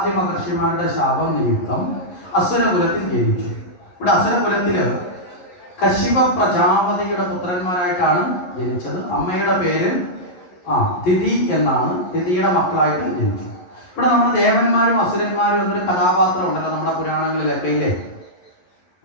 മഹർഷിമാരുടെ ശാപം നിമിത്തം അസുരകുലത്തിൽ ജനിച്ചു. ഇവിടെ അസുരകുലത്തില് കശ്യപ പ്രജാപതിയുടെ പുത്രന്മാരായിട്ടാണ് ജനിച്ചത്. അമ്മയുടെ പേര് തിഥി എന്നാണ്. തിഥിയുടെ മക്കളായിട്ട് ജനിച്ചു. ഇവിടെ നമ്മുടെ ദേവന്മാരും അസുരന്മാരും എന്നൊരു കഥാപാത്രം ഉണ്ടല്ലോ നമ്മുടെ പുരാണങ്ങളിലൊക്കെ, ഇല്ലേ?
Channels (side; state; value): right; late; 11 ms